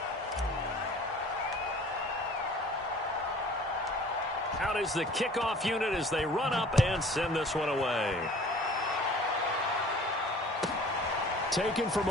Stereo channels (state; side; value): normal; both; correlation 0.48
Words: Out is the kickoff unit as they run up and send this one away. Taken from